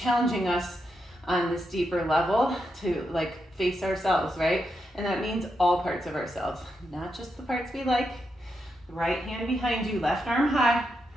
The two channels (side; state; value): both; normal; correlation 0.84